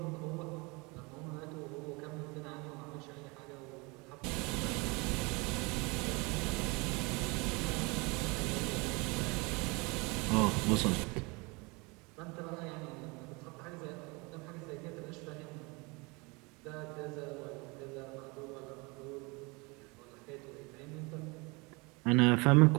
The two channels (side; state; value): left; quieter; 27.5 dB